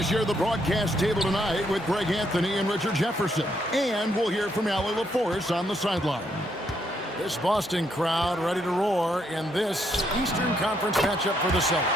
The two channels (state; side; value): normal; both; correlation 0.75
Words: share the broadcast table tonight with Greg Anthony and Richard Jefferson. And we'll hear from Allie LaForce on the sideline. This Boston crowd ready to roar in this Eastern Conference matchup for the